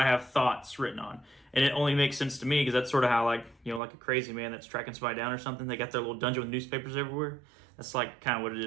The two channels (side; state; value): left; drops out; at 3.8 s